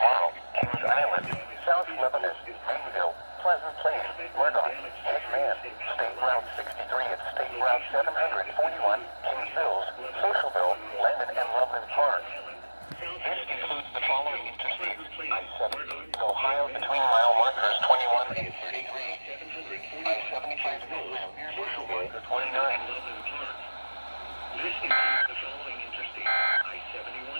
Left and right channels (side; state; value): both; inverted; correlation -1.00